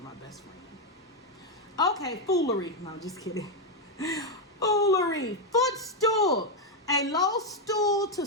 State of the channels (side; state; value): both; normal; correlation 0.03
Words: my best friend. Okay, foolery. No, I'm just kidding. Foolery. Footstool. A low stool to